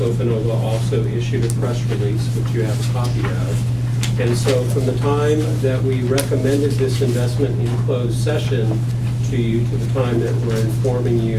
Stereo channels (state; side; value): identical; both; correlation 1.00